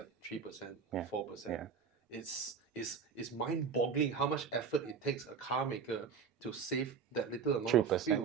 3%, 4%. Yeah. It's mind-boggling how much effort it takes a car maker to save that little amount 3%. of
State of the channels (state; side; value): quieter; left; 6.2 dB